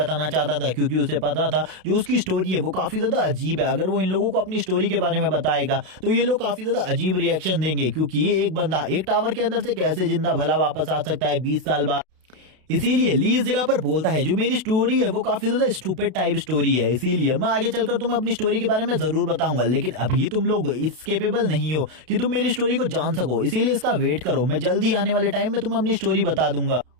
चाहता था क्योंकि उसे पता था जो उसकी स्टोरी है वो काफी ज्यादा अजीब है। अगर वो इन लोगों को अपनी स्टोरी के बारे में बताएगा तो ये लोग काफी ज्यादा अजीब रिएक्शन देंगे क्योंकि ये एक बंदा एक टावर के अंदर से कैसे जिंदा भला वापस आ सकता है 20 साल बाद। इसीलिए ली इस जगह पर बोलता है जो मेरी स्टोरी है वो काफी ज्यादा स्टूपिड टाइप स्टोरी है, इसीलिए मैं आगे चलकर तुम्हें अपनी स्टोरी के बारे में जरूर बताऊंगा, लेकिन अभी तुम लोग इस केपेबल नहीं हो कि तुम मेरी स्टोरी को जान सको, इसीलिए इसका वेट करो, मैं जल्दी आने वाले टाइम में तुम्हें अपनी स्टोरी बता दूंगा।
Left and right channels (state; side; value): late; left; 32 ms